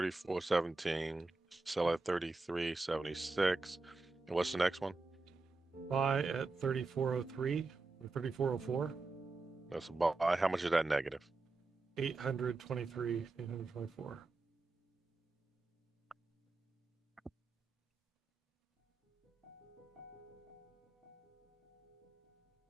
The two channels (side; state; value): left; quieter; 3.4 dB